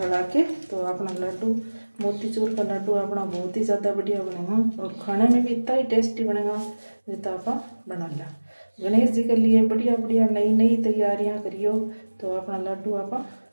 के। तो अपना लड्डू मोतीचूर का लड्डू अपना बहुत ही ज़्यादा बढ़िया बनेगा और खाने में भी इतना ही टेस्टी बनेगा जितना आप बना लिया। गणेश जी के लिए बढ़िया बढ़िया नई नई तैयारियां करियो। तो अपना लड्डू आप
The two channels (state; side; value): inverted; both; correlation -1.00